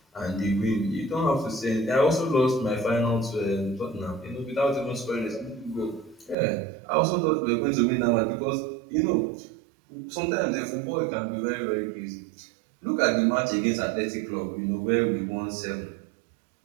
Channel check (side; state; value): left; drops out; at 6.4 s